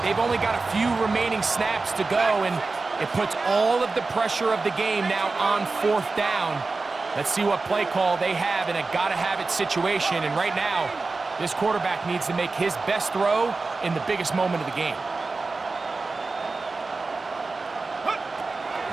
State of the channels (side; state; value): left; quieter; 3.8 dB